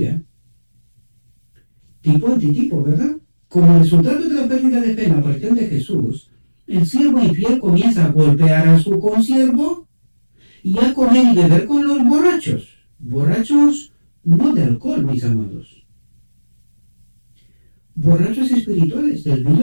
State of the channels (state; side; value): inverted; both; correlation -1.00